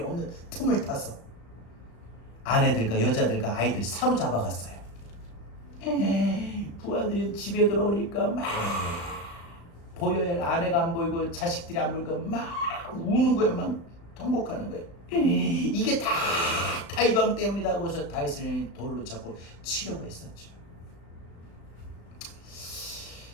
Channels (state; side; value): late; right; 35 ms